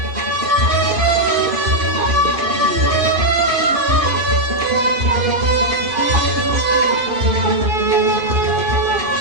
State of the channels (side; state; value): left; late; 2.5 ms